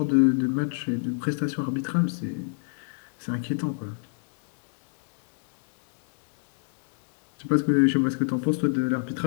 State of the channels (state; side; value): silent; right; 60 dB below the other